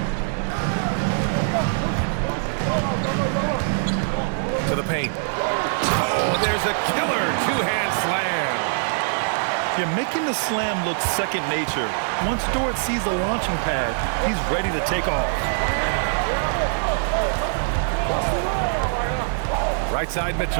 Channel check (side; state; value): left; silent; digital silence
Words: To the paint. Oh, there's a killer 2-hand slam. You're making the slam look second nature. Once Dort sees the launching pad, he's ready to take off. Right side